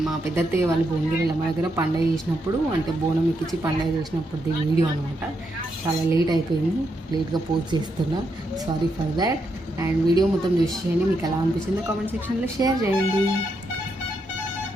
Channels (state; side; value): normal; both; correlation 0.81